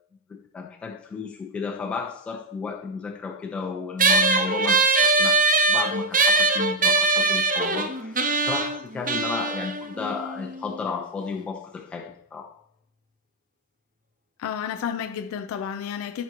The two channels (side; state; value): both; normal; correlation 0.02